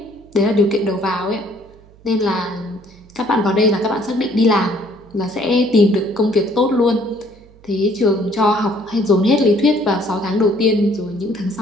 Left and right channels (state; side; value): noise; right; hum, 26 dB below the sound